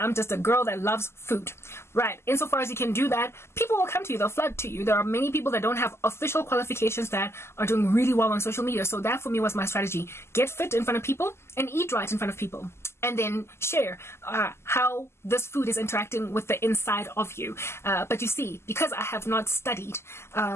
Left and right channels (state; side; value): late; right; 0.12 ms